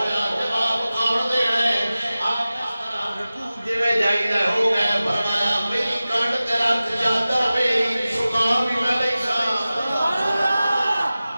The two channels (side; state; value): both; inverted; correlation -0.96